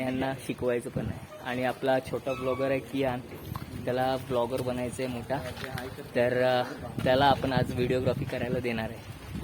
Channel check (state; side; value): identical; both; correlation 1.00